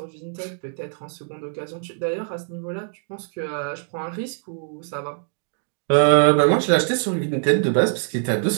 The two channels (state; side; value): silent; left; 57 dB below the other